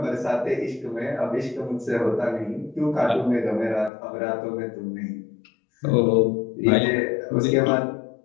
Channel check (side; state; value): right; drops out; at 3.9 s